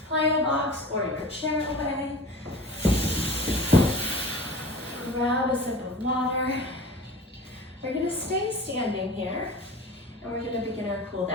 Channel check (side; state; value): both; normal; correlation 0.38